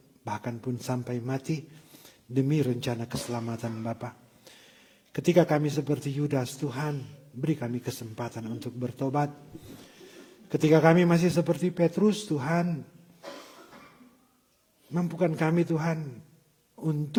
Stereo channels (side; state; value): both; identical; correlation 1.00